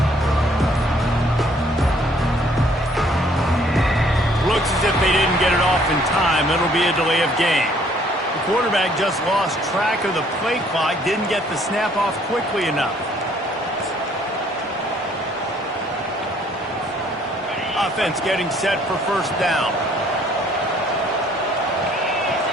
As if they didn't get it off in time, it'll be a delay of game. The quarterback just lost track of the play clock, didn't get the snap off quickly enough. Offense getting set for first down.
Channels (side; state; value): both; normal; correlation 0.62